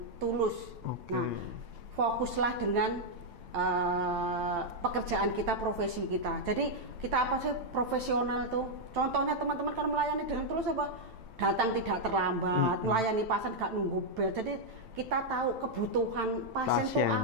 tulus. Nah, fokuslah dengan pekerjaan kita, profesi kita. Jadi kita apa sih profesional tuh? Contohnya teman-teman kan melayani dengan tulus apa? Datang tidak terlambat, melayani pasien gak nunggu bel. Jadi kita tahu kebutuhan pasien tuh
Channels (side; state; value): left; late; 8.9 ms